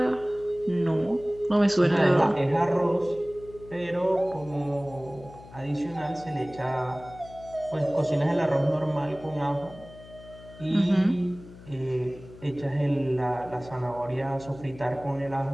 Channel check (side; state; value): left; noise; hum, 19 dB below the sound